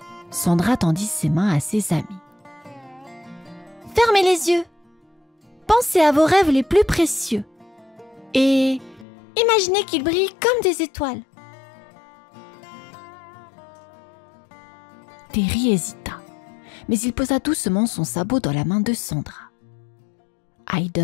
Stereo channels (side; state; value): right; drops out; at 9.1 s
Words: Sandra tendit ses mains à ses amis. « Fermez les yeux. Pensez à vos rêves les plus précieux. Et imaginez qu'ils brillent comme des étoiles. » Terry hésita, mais il posa doucement son sabot dans la main de Sandra.